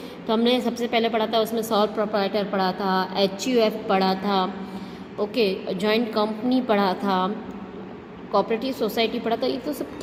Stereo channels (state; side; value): identical; both; correlation 1.00